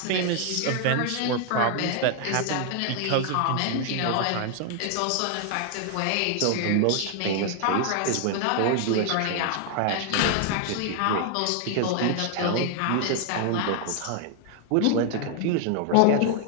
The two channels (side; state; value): both; different; correlation 0.00